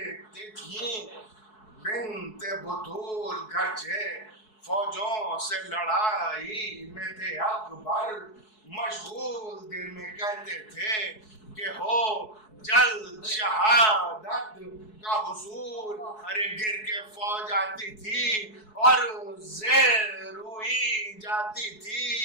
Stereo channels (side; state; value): right; late; 4.7 ms